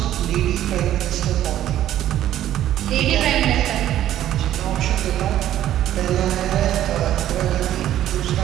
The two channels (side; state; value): left; quieter; 12.3 dB